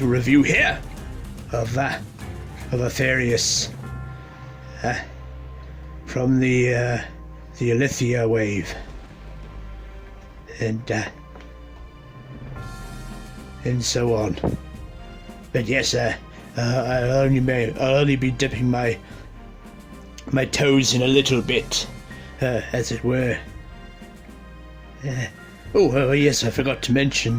review here of Aphareus from the Alethea wave, and so on. But yes, I'll only be dipping my toes in a little bit, as it were. Yes, I forgot to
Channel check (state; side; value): identical; both; correlation 1.00